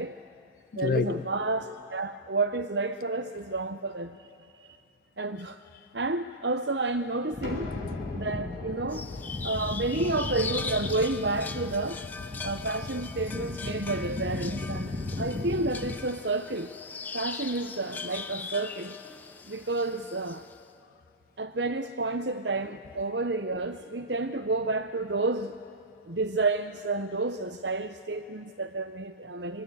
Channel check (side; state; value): both; normal; correlation -0.08